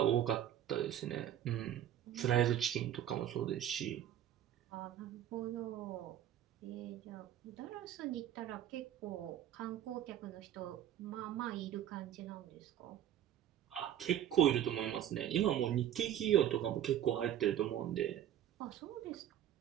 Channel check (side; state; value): left; quieter; 11.1 dB